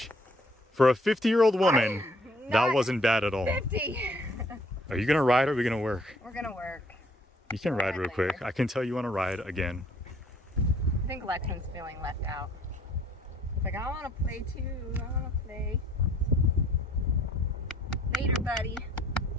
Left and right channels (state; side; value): normal; both; correlation 0.61